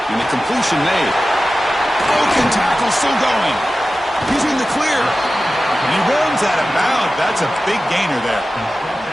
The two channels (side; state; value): both; normal; correlation 0.94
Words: And the completion made. Broken tackle still going. He's in the clear. And he runs out of bounds. That's a big gainer there.